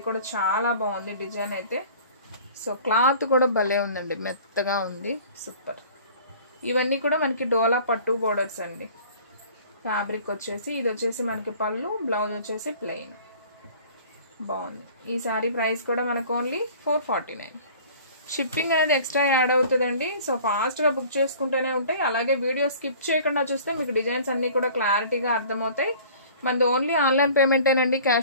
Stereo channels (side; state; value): both; inverted; correlation -0.47